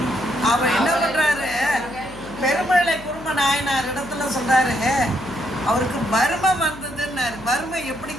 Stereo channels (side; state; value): left; noise; hum, 18 dB below the sound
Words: அவர் என்ன பண்றாரு, பெருமழை குரும நாயனார் இடத்துல சொல்றாரு, அவருக்கு வறுமை வந்ததுன்னாரு. வறுமை